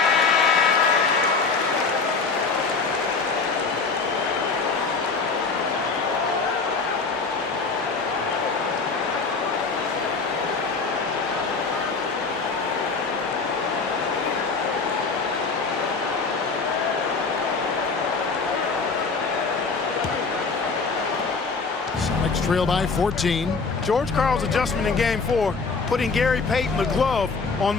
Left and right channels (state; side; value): quieter; right; 4.5 dB